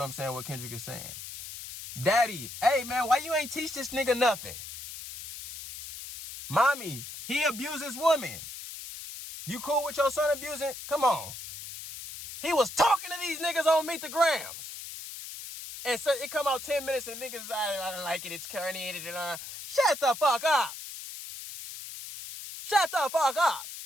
saying what Kendrick is saying. Daddy, hey man, why you ain't teach this nigga nothing? Mommy, he abuses women. You cool with your son abusing? Come on. He was talking to these niggas on Meet the Grams. And so it come out 10 minutes and niggas, I don't like it, it's corny. Shut the fuck up. Shut the fuck up.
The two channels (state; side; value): noise; left; hiss, 11 dB below the sound